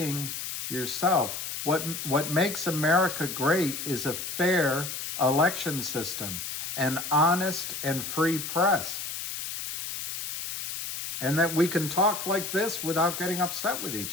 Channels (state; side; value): noise; left; hiss, 6 dB below the sound